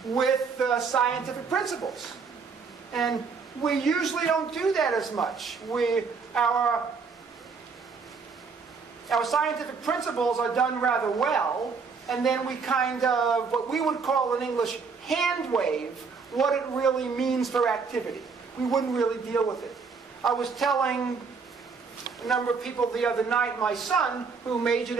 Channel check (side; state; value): left; quieter; 5.2 dB